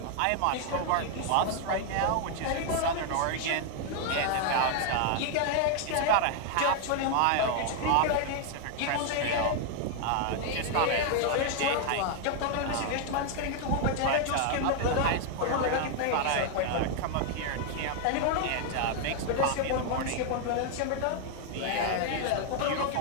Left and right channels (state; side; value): different; both; correlation 0.00